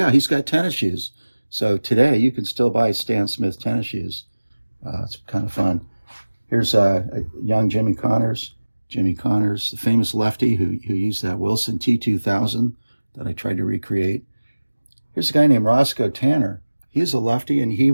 he's got tennis shoes. So today you can still buy Stan Smith tennis shoes. It's kind of fun. Here's a young Jimmy Connors. Jimmy Connors, the famous lefty who used that Wilson T2000 that I tried to recreate. Here's a guy named Roscoe Tanner. He's a lefty, and he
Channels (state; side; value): inverted; both; correlation -1.00